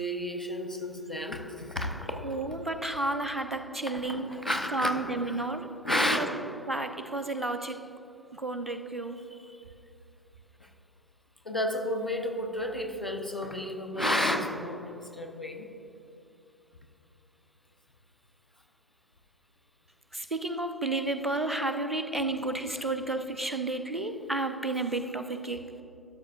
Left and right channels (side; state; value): both; normal; correlation 0.37